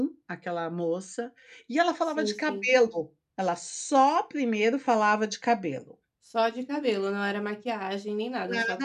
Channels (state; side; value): identical; both; correlation 1.00